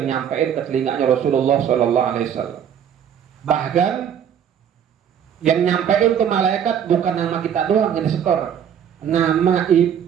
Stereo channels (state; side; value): quieter; left; 8.7 dB